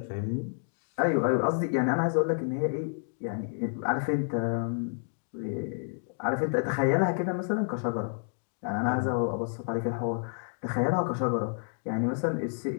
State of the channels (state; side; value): silent; right; 58 dB below the other